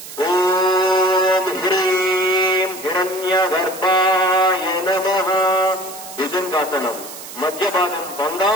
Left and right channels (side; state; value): right; noise; hiss, 13 dB below the sound